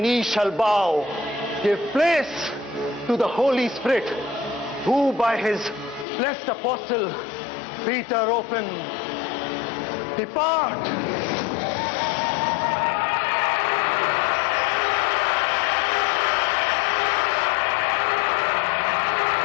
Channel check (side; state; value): right; drops out; at 6.1 s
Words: shall bow. Give place to the Holy Spirit, who by his blessed apostle Peter opened. Depart.